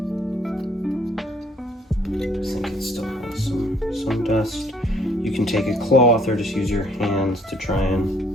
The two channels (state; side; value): normal; both; correlation 0.63